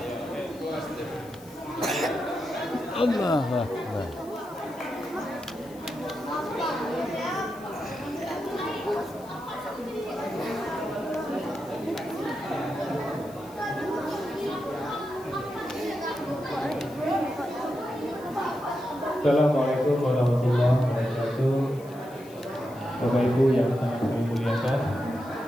Allahu Akbar. Assalamualaikum warahmatullahi wabarakatuh. Bapak Ibu yang sangat kami muliakan,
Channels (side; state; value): left; noise; hiss, 23 dB below the sound